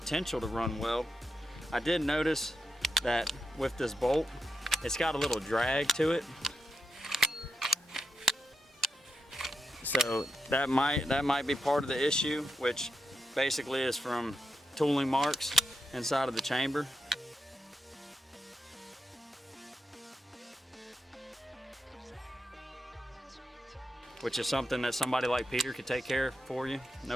to run well. I did notice that with this bolt, it's got a little drag to it. So that might be part of the issue, which basically is from tooling marks inside of the chamber. Which is something that somebody like Peter could take care of for you,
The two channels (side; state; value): both; normal; correlation 0.85